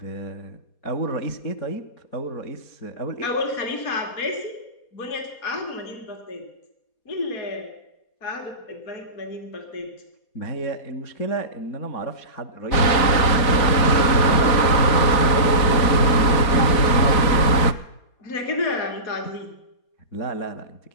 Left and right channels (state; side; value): late; right; 4.2 ms